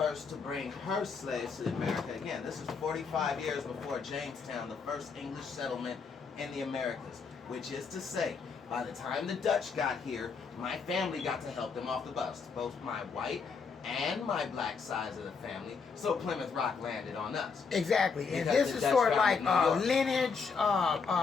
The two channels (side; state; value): right; quieter; 5.3 dB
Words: to bring her slaves to America. Again, this is 45 years before Jamestown, the first English settlement in the Americas, which is to say, by the time the Dutch got here, my family got to help them off the bus, both my white and my black sides of the family, so Plymouth Rock landed on us. Exactly, and this is sort of like lineage,